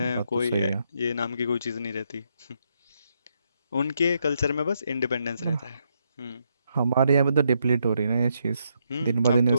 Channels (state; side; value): inverted; both; correlation -0.78